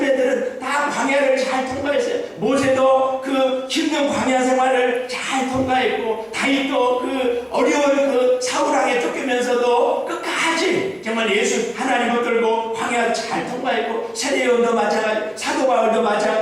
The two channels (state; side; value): identical; both; correlation 1.00